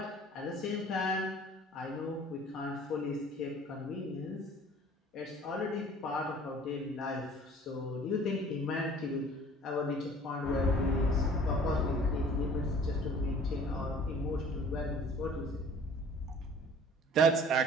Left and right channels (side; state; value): both; normal; correlation 0.50